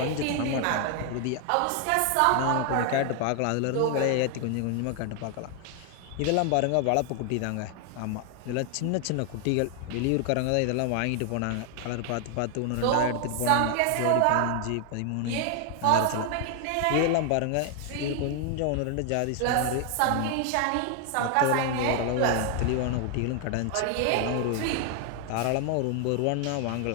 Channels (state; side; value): different; both; correlation 0.00